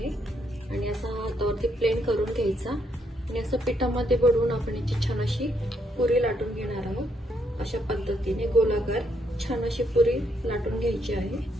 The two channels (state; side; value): normal; both; correlation 0.75